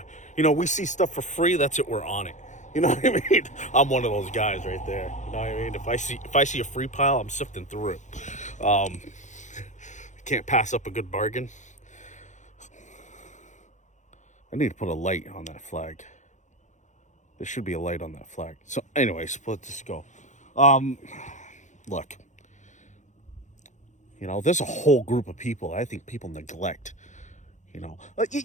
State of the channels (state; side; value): late; right; 0.35 ms